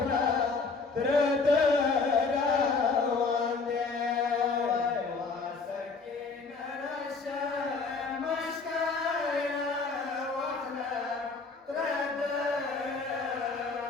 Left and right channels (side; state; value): right; quieter; 4.3 dB